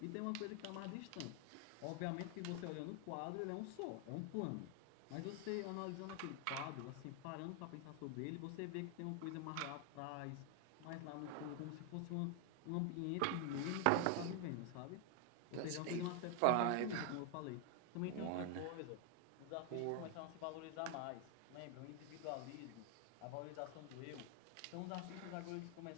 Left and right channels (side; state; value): both; different; correlation 0.00